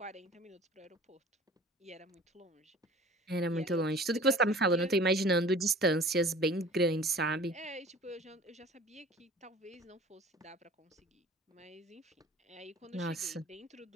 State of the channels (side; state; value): both; normal; correlation 0.45